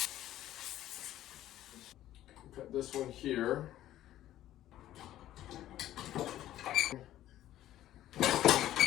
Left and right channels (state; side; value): quieter; right; 13.3 dB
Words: Cut this one here.